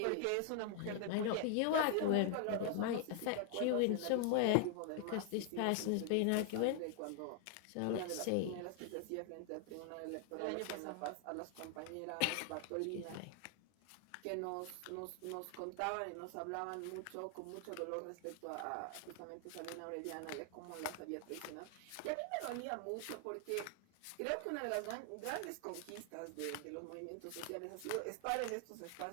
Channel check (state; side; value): different; both; correlation 0.00